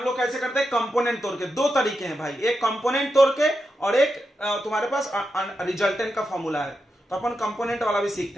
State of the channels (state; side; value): normal; both; correlation 0.87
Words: लोग कैसे करते हैं, कंपोनेंट तोड़ के। दो तरीके हैं भाई, एक कंपोनेंट तोड़ के और एक तुम्हारे पास रिजल्टेंट का फॉर्मूला है, तो अपन कंपोनेंट वाला भी सीखते